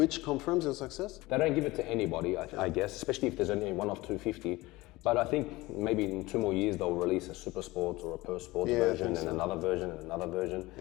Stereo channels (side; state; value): right; quieter; 20.2 dB